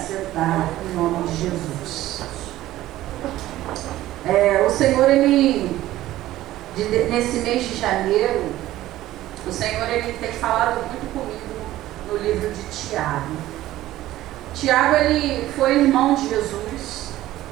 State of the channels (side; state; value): left; quieter; 15.0 dB